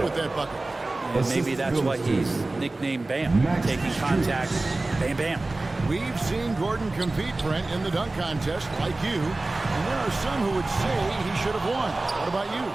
with that bucket. And maybe that's why he's nicknamed Bam. Taking contact, bam, bam. We've seen Gordon compete, Brent, in the dunk contest like you, and there are some who would say he should have won. What about you?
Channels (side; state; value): left; quieter; 3.0 dB